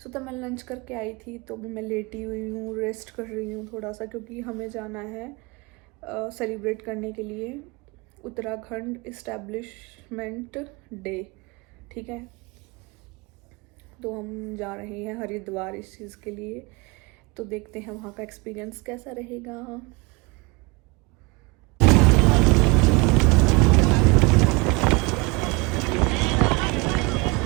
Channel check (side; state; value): left; quieter; 26.5 dB